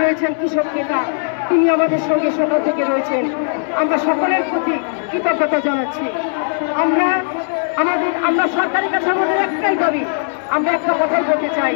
রয়েছেন, কৃষক নেতা, তিনি আমাদের সঙ্গে সকাল থেকে রয়েছেন। আমরা সকলের প্রতি কৃতজ্ঞতা জানাচ্ছি। আমরা সরকারের কাছে আমাদের একটাই দাবি, আমরা একটা কথাই বলতে চাই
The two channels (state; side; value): silent; right; 68 dB below the other